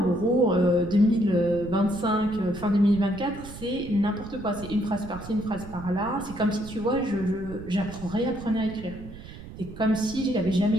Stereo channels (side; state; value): right; noise; rumble, 14 dB below the sound